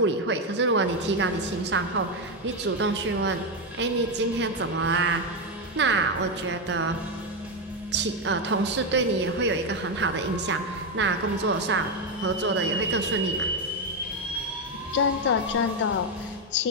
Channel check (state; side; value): normal; both; correlation 0.07